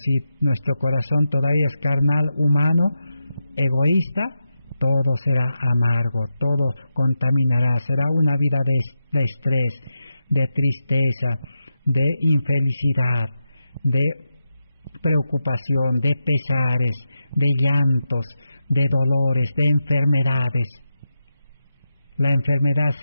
si nuestro corazón todavía es carnal, humano, egoísta, todo será amargo, todo contaminará, será una vida de estrés, de tristeza, de infelicidad, de preocupación, de pesares, de llantos, de dolores, de enfermedades. La enfermedad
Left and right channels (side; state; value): both; inverted; correlation -0.88